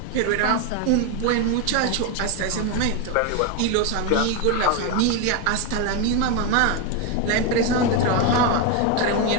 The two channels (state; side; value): different; both; correlation 0.02